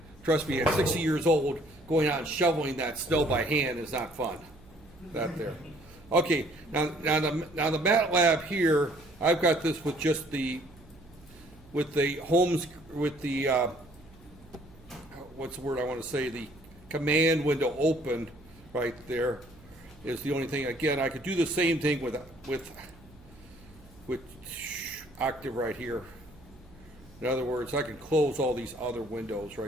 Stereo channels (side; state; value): right; noise; hum, 24 dB below the sound